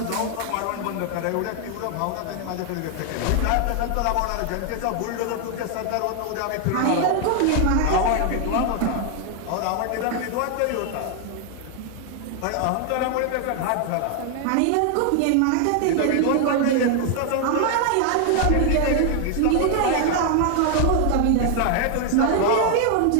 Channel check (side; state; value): both; different; correlation 0.00